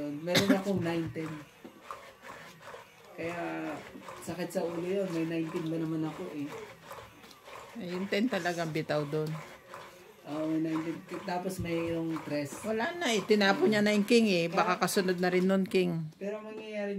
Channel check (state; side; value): identical; both; correlation 1.00